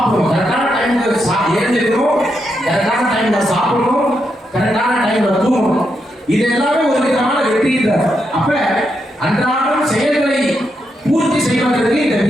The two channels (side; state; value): both; normal; correlation 0.82